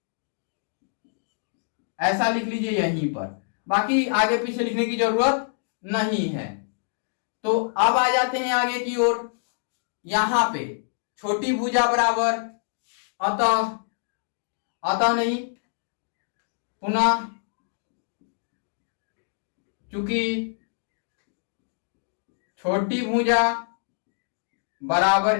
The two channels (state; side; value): silent; right; digital silence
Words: ऐसा लिख लीजिए यहीं पर, बाकी आगे पीछे लिखने की जरूरत नहीं है। तो अब आ जाते हैं आगे की ओर, यहां पे छोटी भुजा बराबर अतः नहीं पुनः चूंकि छोटी भुजा बराबर